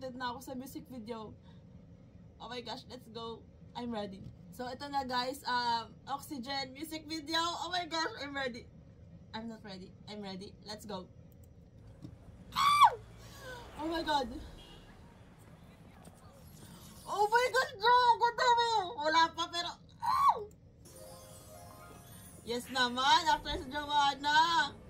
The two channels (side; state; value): both; identical; correlation 1.00